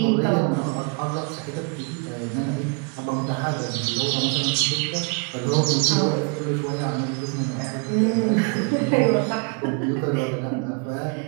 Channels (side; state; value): left; quieter; 34.5 dB